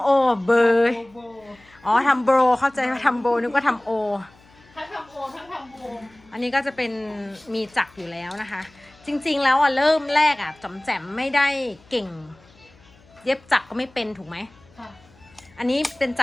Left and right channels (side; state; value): left; noise; hum, 28 dB below the sound